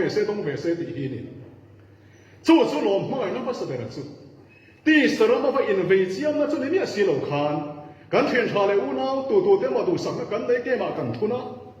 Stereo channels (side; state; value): both; identical; correlation 1.00